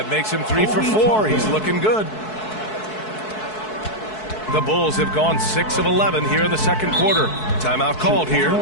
makes him 3 for 4. He's looking good. The Bulls have gone 6 of 11 here in the second quarter. Timeout called here.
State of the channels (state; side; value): late; right; 4.6 ms